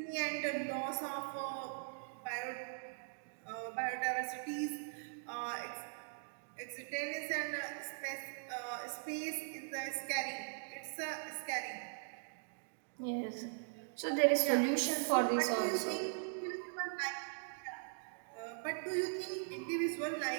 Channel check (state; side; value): silent; left; digital silence